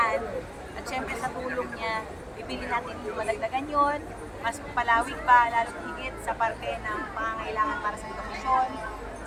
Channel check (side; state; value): both; identical; correlation 1.00